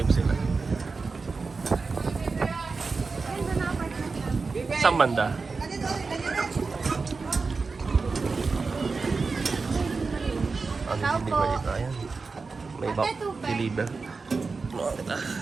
sila. Saan banda? Ano deliver dito? Ayan. May back deliver. Ano kita?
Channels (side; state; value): left; quieter; 4.3 dB